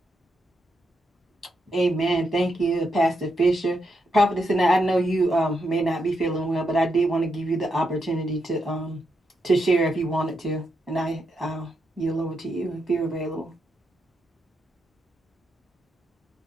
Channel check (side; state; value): both; normal; correlation 0.82